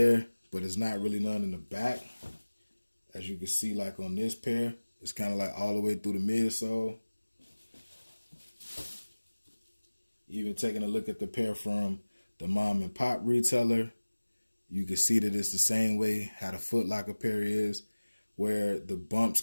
but it's not really none in the back. As you can see, like on this pair, it's kind of like all the way through the midsole. Even taking a look at the pair from the mom and pop retailer, you can see that it's the same way how the Footlocker pair is, where the bumps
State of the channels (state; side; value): inverted; both; correlation -1.00